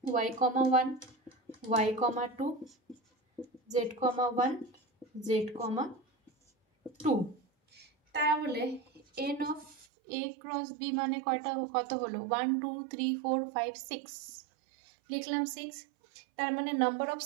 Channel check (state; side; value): drops out; left; at 9.9 s